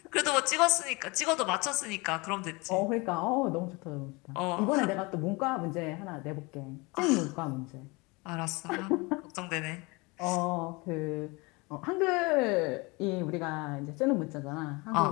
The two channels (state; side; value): quieter; right; 26.1 dB